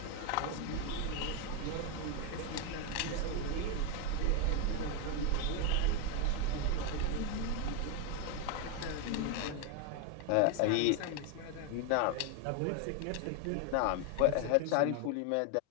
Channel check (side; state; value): both; different; correlation 0.01